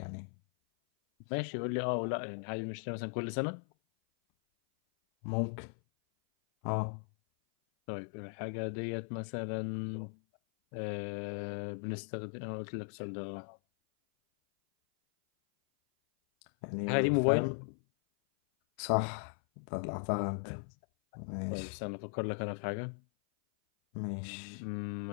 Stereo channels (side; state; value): right; silent; 53 dB below the other